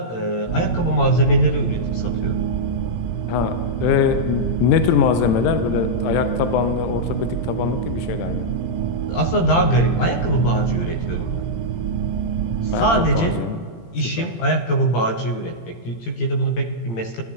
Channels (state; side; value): late; right; 18 ms